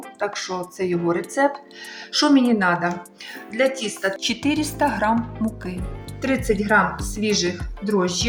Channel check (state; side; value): identical; both; correlation 1.00